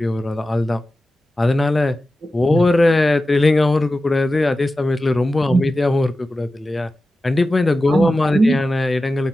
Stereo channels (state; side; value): normal; both; correlation 0.94